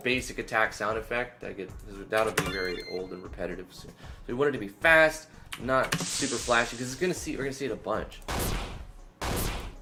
basic attack sound effect. That'll be very old and repetitive. So we want it to be fast, not super flashy, because we're gonna see it a bunch.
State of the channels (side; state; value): both; identical; correlation 1.00